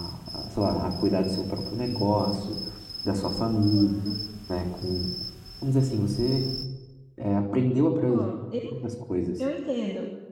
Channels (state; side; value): identical; both; correlation 1.00